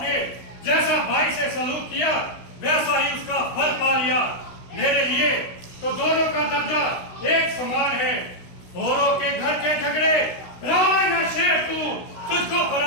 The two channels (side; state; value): right; late; 16 ms